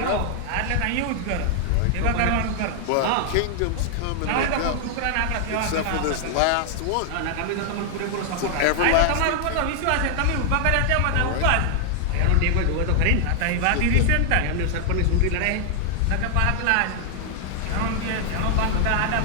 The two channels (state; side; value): different; both; correlation 0.00